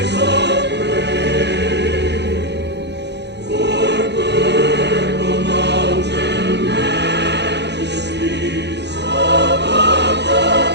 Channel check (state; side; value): late; left; 0.50 ms